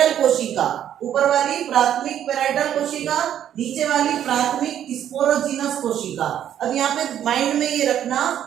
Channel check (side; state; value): left; quieter; 10.4 dB